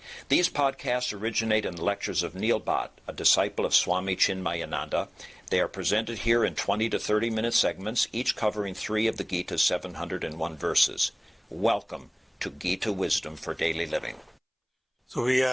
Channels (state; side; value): identical; both; correlation 1.00